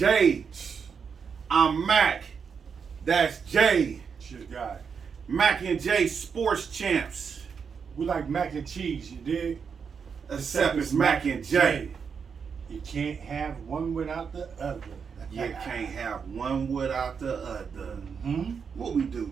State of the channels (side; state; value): left; quieter; 6.3 dB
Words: I'm Mac. That's Jay. Shit guy. Mac and J Sports Champs. We like mac and cheese, you dig? Except it's Mac and J. You can't have one without the other. You can't have one without the other. Hmm? What we do,